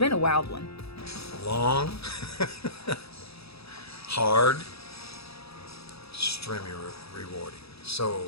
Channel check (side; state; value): right; late; 0.77 ms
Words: a wild one. Long, hard, extremely rewarding. So